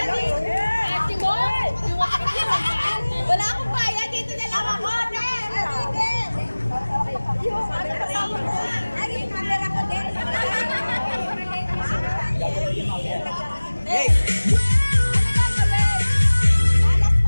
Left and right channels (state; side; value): inverted; both; correlation -1.00